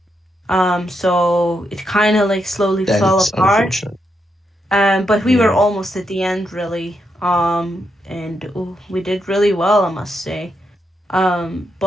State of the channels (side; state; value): both; normal; correlation 0.82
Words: So it kind of like slowly That fell is apart. unfortunate. But we were yeah. almost at the end, really. And we did really well, I must say.